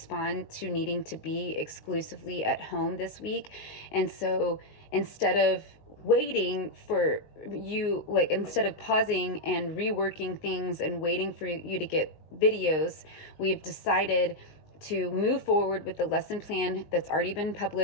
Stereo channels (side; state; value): right; late; 19 ms